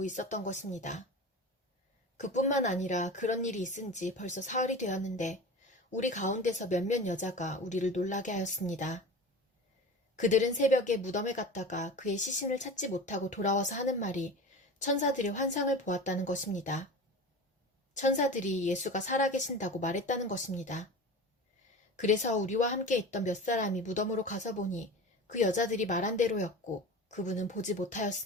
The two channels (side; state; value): both; normal; correlation 0.33